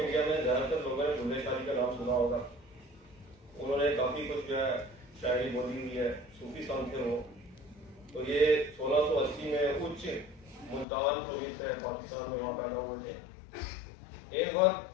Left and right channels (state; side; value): drops out; right; at 10.9 s